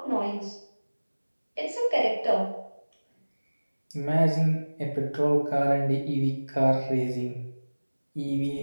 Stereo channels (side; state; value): both; inverted; correlation -1.00